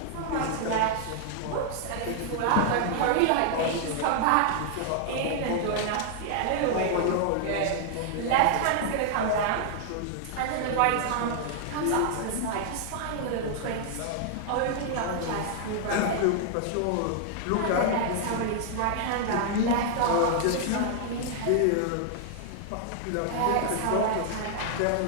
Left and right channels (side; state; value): both; different; correlation -0.01